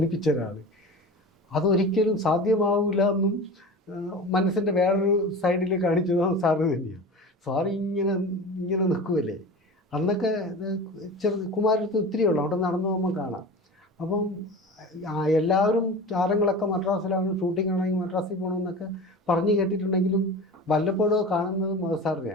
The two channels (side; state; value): both; normal; correlation 0.33